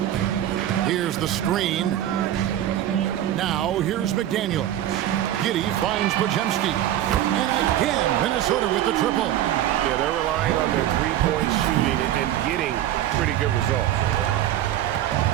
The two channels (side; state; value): left; quieter; 12.4 dB